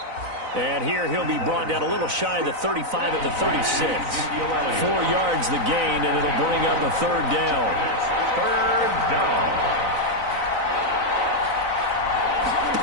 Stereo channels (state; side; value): late; left; 4.0 ms